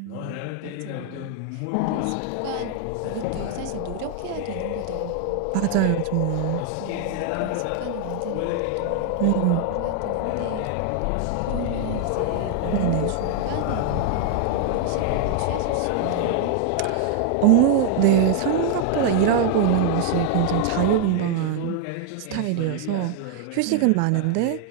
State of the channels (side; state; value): both; different; correlation 0.00